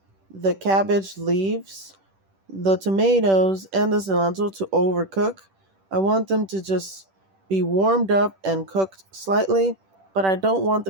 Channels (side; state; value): left; late; 10 ms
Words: the cabbage leaves, the tomatoes, and the cilantro to overcook. I want them to just be warmed up and cooked slightly, but I don't want